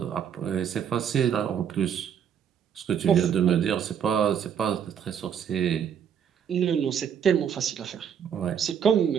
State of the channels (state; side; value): quieter; left; 8.3 dB